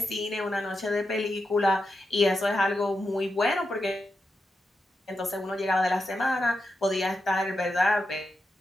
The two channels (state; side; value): normal; both; correlation 0.88